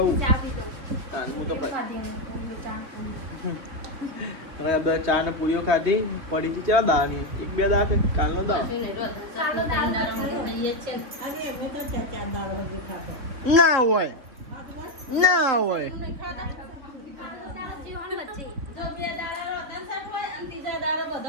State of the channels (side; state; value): left; late; 3.4 ms